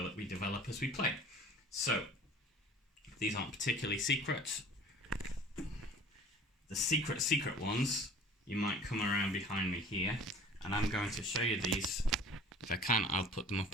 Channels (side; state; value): both; normal; correlation 0.46